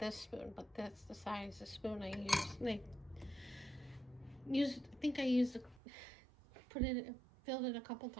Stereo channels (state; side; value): drops out; left; at 5.8 s